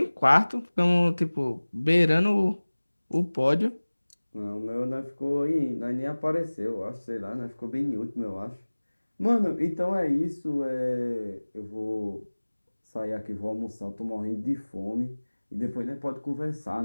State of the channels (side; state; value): both; inverted; correlation -1.00